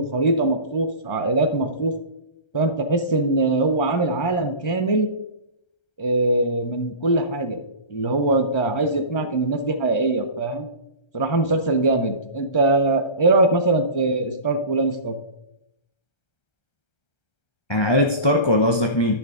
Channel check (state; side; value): late; right; 1.3 ms